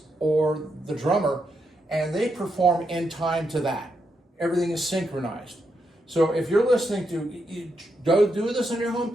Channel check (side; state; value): both; normal; correlation 0.82